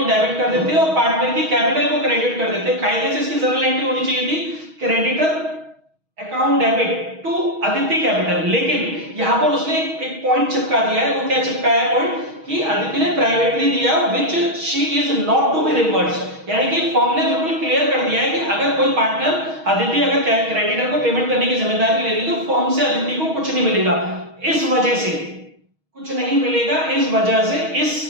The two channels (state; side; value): late; left; 6.3 ms